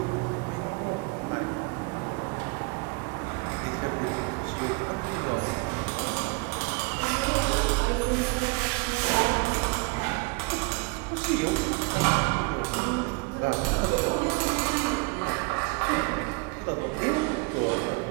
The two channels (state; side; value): quieter; left; 28.7 dB